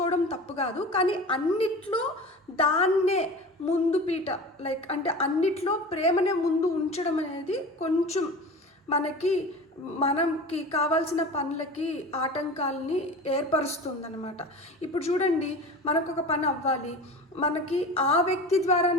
తప్పు కాదు, కానీ అన్నిట్లో దాన్నే ముందు పీట, లైక్ అంటే అన్నిట్లో ప్రేమనే ముందు ఉంచడం అనేది కొంచెం మనకి కావాల్సిన పనులకి ఆటంకాలని ఏర్పరుస్తుందన్నమాట. ఇప్పుడు చూడండి, మనకు ఒక పని అవ్వాలి, మనకి ఆ వ్యక్తి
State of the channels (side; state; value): both; normal; correlation 0.34